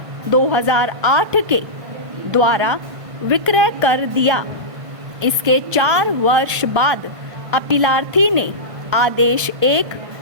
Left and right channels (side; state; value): left; late; 1.5 ms